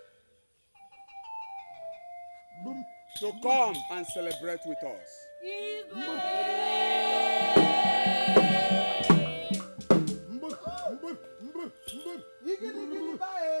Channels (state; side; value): inverted; both; correlation -1.00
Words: to come and celebrate with us.